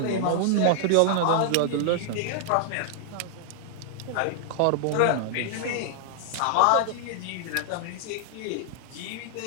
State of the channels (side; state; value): both; different; correlation -0.01